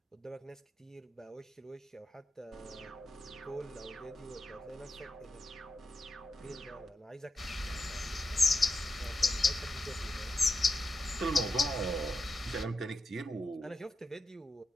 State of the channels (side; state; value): both; normal; correlation 0.88